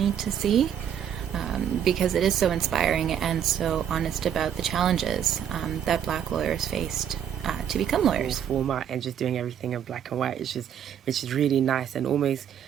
to see, because it is so inspiring and so honest about the challenges that Black lawyers faced to become lawyers. Format and just doing everything in black and white, which is really nice and almost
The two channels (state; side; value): quieter; left; 9.0 dB